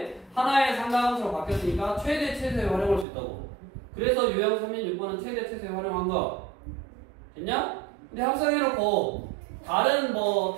하나의 삼각함수로 바뀌었으니까 최대 최소에 활용할 수 있다고. 그래서 유형 36번은 최대 최소에 활용한 거. 됐냐? 근데 합성해놓고 다른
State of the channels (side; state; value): left; drops out; at 3.1 s